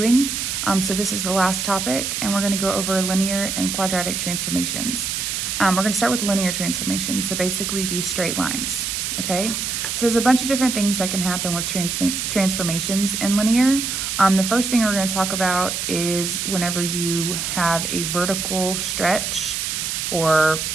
So this is the last topic, and we're going to go over linear and quadratic transformations. We're going to start with linear transformations, so basically these straight lines, okay? So there's a bunch of different things that can happen with transformations in linear. The first thing we're going to talk about is whenever you have a vertical stretch or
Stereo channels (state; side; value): noise; right; hiss, 2 dB below the sound